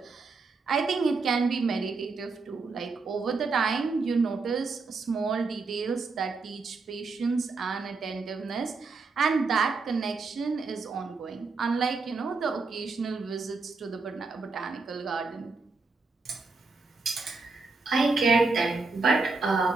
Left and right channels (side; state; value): left; quieter; 4.1 dB